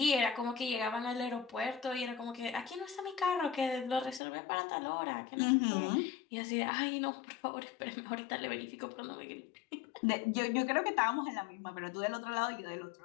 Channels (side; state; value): right; drops out; at 4.2 s